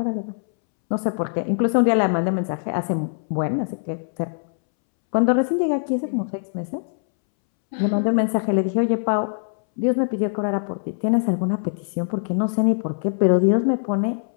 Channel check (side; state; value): right; silent; 64 dB below the other